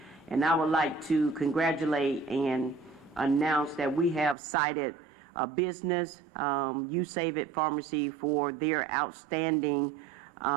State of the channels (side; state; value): left; drops out; at 4.4 s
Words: And I would like to congratulate and announce that we have cited a business, You Save It Pharmacy, for their outstanding,